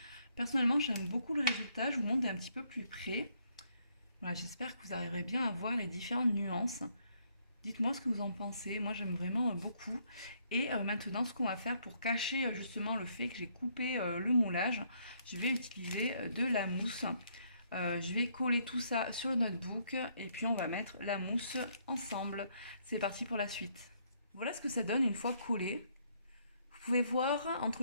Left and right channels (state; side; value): inverted; both; correlation -0.70